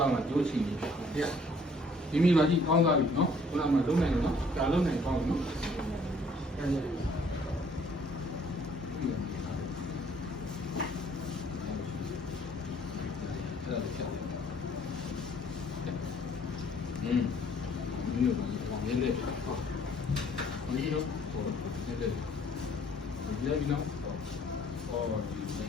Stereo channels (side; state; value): both; normal; correlation 0.60